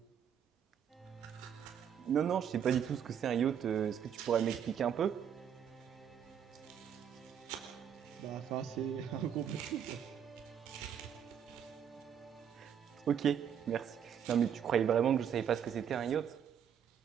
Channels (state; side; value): quieter; left; 8.5 dB